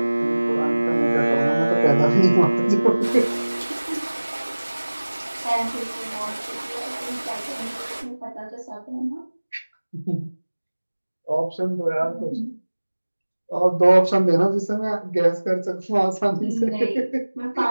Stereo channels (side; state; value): both; inverted; correlation -1.00